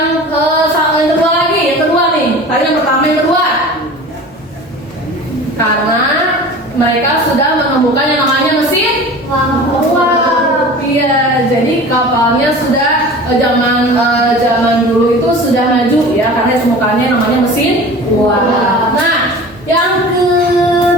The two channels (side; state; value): both; normal; correlation 0.38